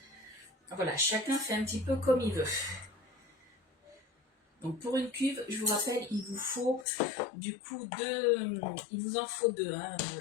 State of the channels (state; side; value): drops out; right; at 6.9 s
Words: voilà, chacun fait un petit peu comme il veut. Donc pour une cuve, je vous rappelle, il vous faut du coup il vous en faut deux, hein,